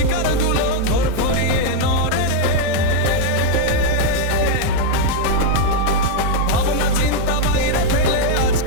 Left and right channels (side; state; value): both; different; correlation 0.00